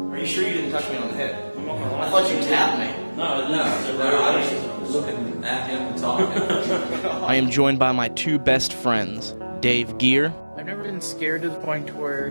Are you sure you didn't touch me on the head? I thought you tapped me. No, I was looking at him and talking. I am joined by my two best friends, Dave Gear. I've never been scared to the point where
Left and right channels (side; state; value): both; inverted; correlation -1.00